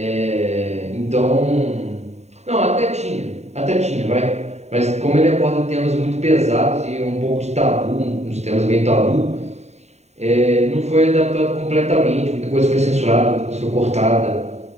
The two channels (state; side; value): late; left; 0.32 ms